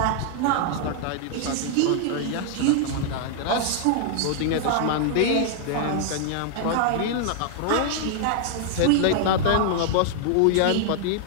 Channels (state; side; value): different; both; correlation 0.00